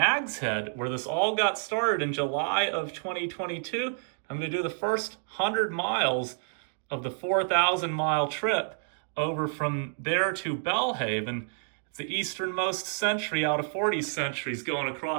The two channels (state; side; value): silent; left; digital silence